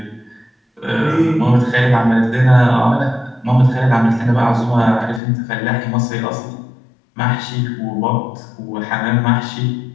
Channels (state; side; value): drops out; right; at 5.2 s